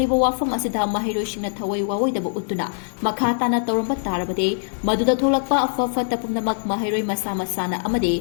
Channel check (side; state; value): right; silent; digital silence